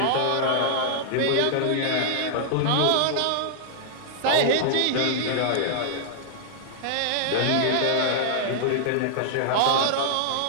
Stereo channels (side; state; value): both; different; correlation -0.01